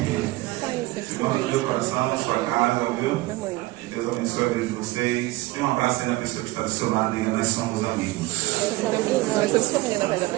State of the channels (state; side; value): quieter; left; 19.6 dB